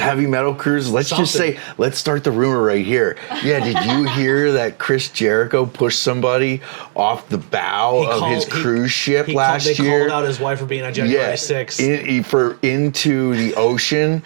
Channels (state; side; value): silent; left; digital silence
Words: metal cruises. Let's just Something. say, let's start the rumor right here. Yeah, did you hear that Chris Jericho pushed somebody off the bow of his cruise ship last They year? called out his wife for being on January 6th. Into the ocean